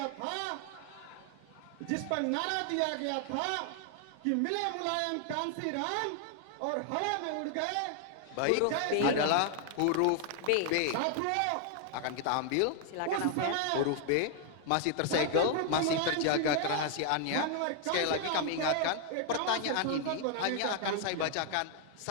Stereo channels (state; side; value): different; both; correlation 0.00